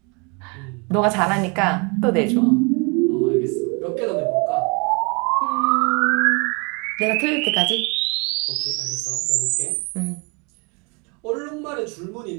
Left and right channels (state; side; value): quieter; left; 32.2 dB